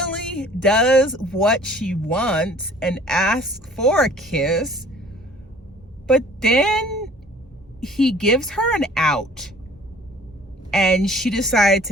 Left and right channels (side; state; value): both; normal; correlation 0.51